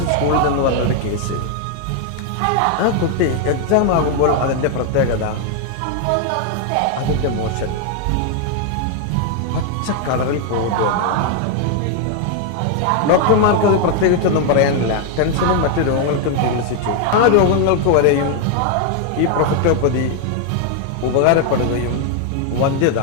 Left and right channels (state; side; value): different; both; correlation 0.01